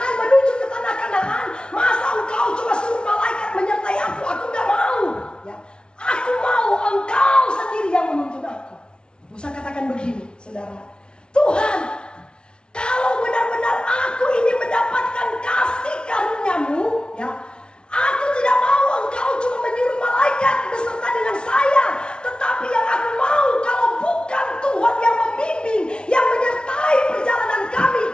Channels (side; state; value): right; late; 0.056 ms